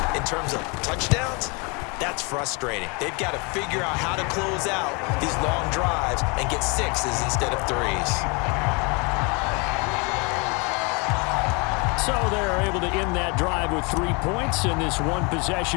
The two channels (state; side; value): quieter; right; 30.9 dB